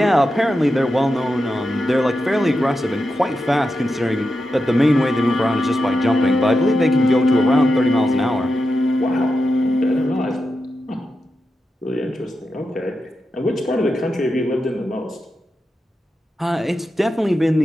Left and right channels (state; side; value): normal; both; correlation 0.89